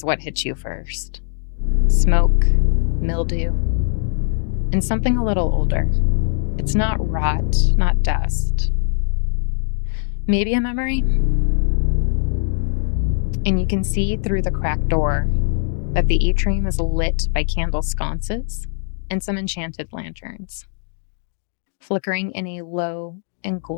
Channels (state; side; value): silent; right; digital silence